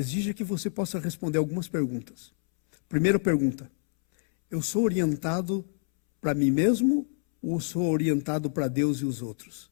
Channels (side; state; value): right; silent; 60 dB below the other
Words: que você possa responder algumas perguntas. Primeira pergunta, eu sou orientado para mim mesmo ou sou orientado para Deus e os outros?